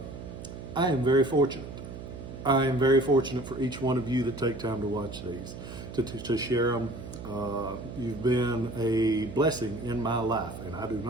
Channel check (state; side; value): noise; right; hum, 11 dB below the sound